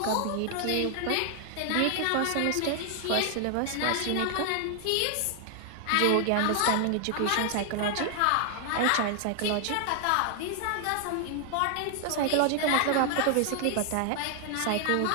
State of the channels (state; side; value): different; both; correlation 0.00